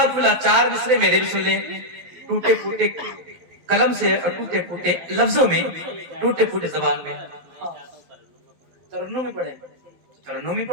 بولا 4 مصرے میرے بھی سن لیں, ٹوٹے پھوٹے قلم سے اور ٹوٹے پھوٹے لفظوں میں, ٹوٹے پھوٹے زبان میں. ترنم میں پڑھیں, ترنم میں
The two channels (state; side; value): late; left; 12 ms